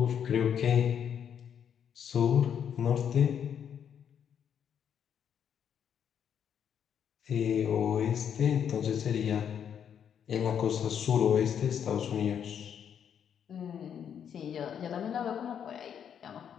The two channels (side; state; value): right; quieter; 8.4 dB